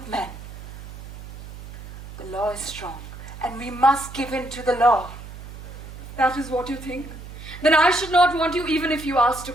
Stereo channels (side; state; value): right; noise; hum, 13 dB below the sound